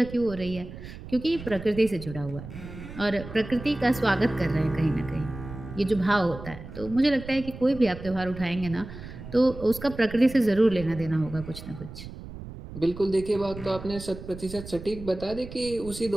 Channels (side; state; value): right; noise; rumble, 13 dB below the sound